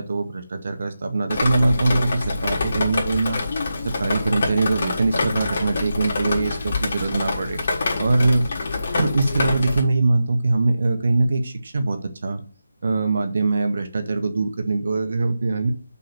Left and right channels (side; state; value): both; inverted; correlation -0.90